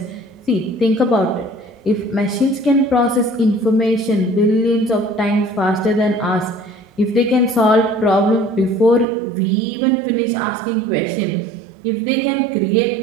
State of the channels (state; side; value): drops out; left; at 9.1 s